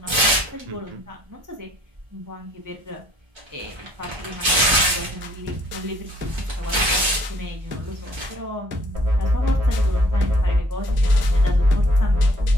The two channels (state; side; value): late; left; 1.3 ms